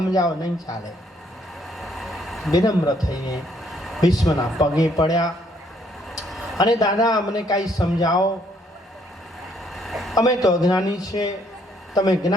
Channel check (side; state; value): both; normal; correlation 0.68